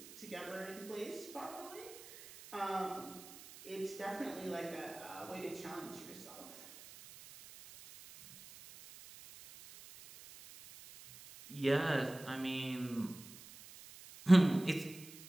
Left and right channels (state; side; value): noise; right; hiss, 17 dB below the sound